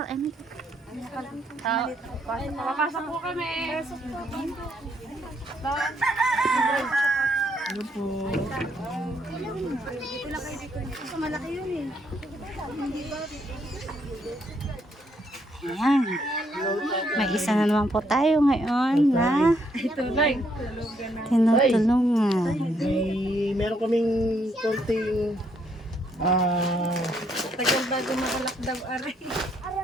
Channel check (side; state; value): both; normal; correlation 0.72